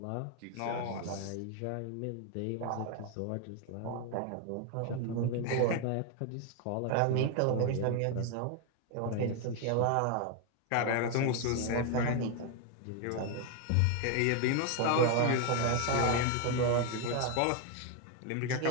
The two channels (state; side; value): different; both; correlation 0.01